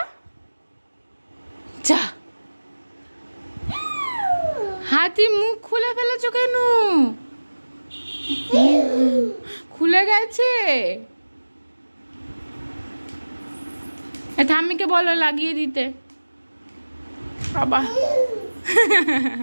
যা। হাতি মুখ খুলে ফেলেছো কেন? খুলে গেছে। ঠাম্মিকে বলো লাগিয়ে দিতে। বাবা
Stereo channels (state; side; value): inverted; both; correlation -1.00